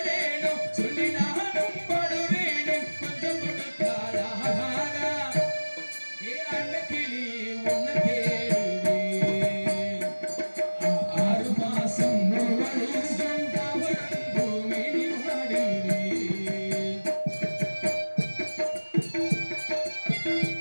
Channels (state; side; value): inverted; both; correlation -1.00